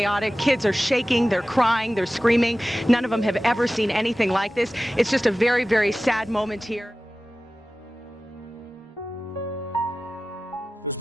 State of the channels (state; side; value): normal; both; correlation 0.96